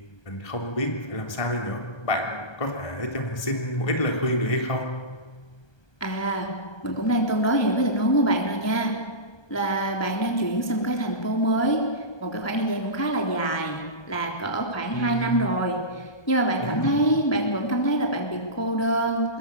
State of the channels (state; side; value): late; right; 1.2 ms